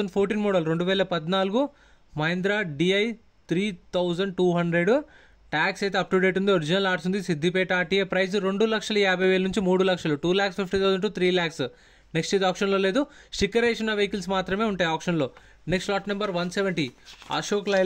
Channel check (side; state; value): both; identical; correlation 1.00